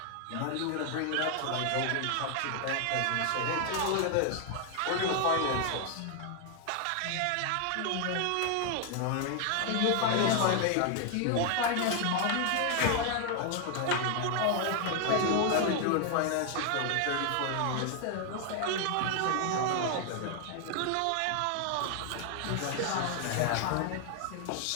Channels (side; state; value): both; different; correlation 0.00